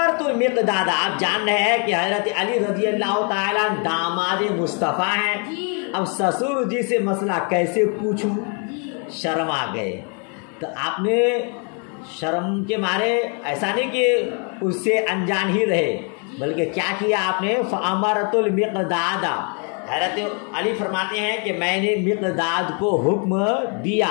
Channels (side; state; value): right; quieter; 38.3 dB